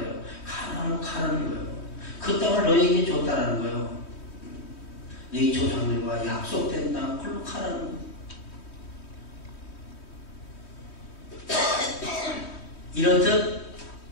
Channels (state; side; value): late; right; 3.1 ms